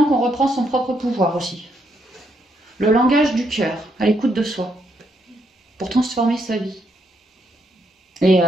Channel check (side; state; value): both; normal; correlation 0.76